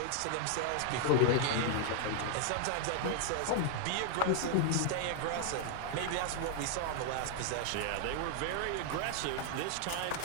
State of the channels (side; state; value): both; different; correlation 0.00